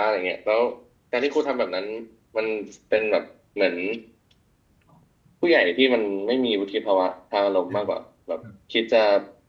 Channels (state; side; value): identical; both; correlation 1.00